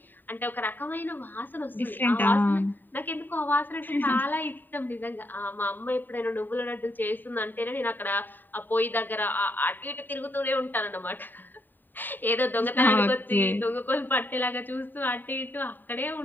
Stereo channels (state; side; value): late; right; 0.091 ms